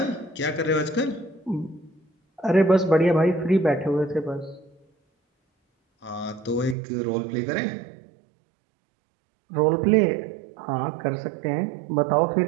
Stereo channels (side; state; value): left; drops out; at 6.8 s